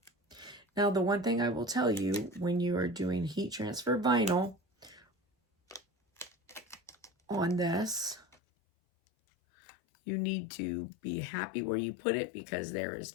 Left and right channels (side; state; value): right; drops out; at 8.3 s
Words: Now, the one thing I will tell you when you are doing heat transfer vinyl on this, you need to be happy where you put it because there